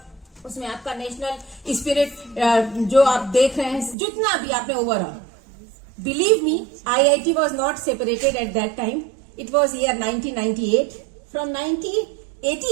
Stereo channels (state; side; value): drops out; left; at 4.0 s